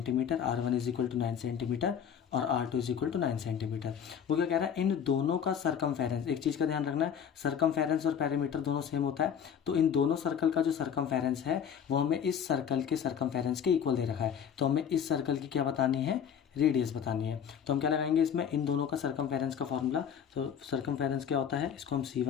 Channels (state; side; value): quieter; right; 8.1 dB